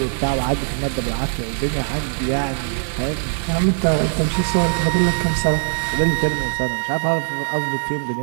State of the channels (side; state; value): left; silent; digital silence